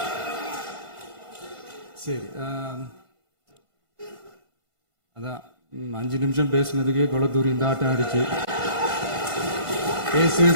சரி, அதான் 5 நிமிஷம் பேசுனதுக்கே கொலத்தூரி இந்த ஆட்டம் ஆயிடுச்சு.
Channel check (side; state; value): left; late; 1.5 ms